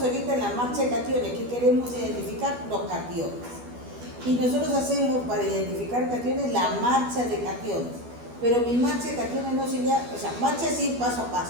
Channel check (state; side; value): late; left; 12 ms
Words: ahorita en la marcha de cationes, ¿qué queremos identificar? Los cationes. Y nosotros hacemos para identificar cationes la marcha de cationes. Pero mi marcha de cationes no se llama, o sea, marcha es ir paso a